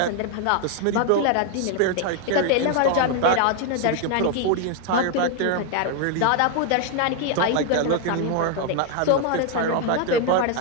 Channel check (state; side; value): different; both; correlation 0.00